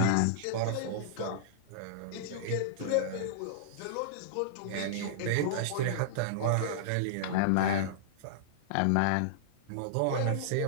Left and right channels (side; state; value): both; different; correlation -0.02